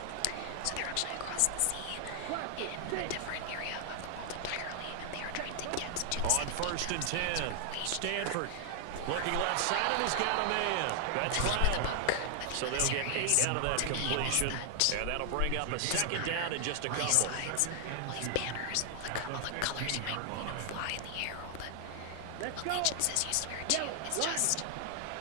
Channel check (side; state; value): both; different; correlation 0.00